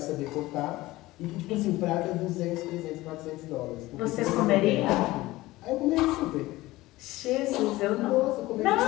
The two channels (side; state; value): right; quieter; 18.4 dB